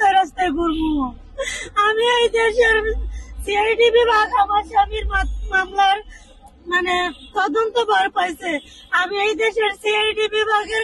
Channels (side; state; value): both; identical; correlation 1.00